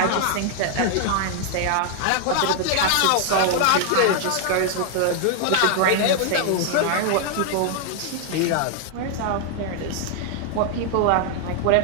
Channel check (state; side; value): different; both; correlation 0.00